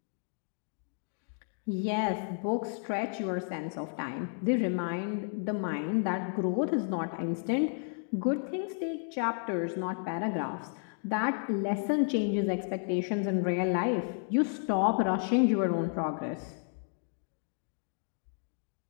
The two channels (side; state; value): right; silent; 56 dB below the other